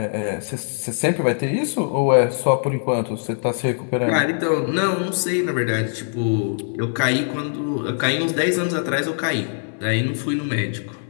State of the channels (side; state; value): right; silent; digital silence